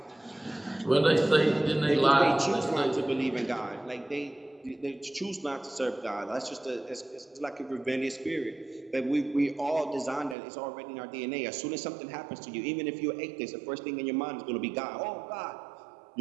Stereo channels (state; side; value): drops out; left; at 10.4 s